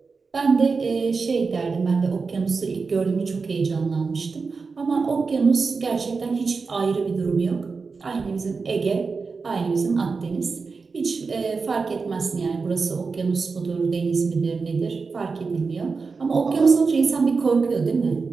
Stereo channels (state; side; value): quieter; left; 4.7 dB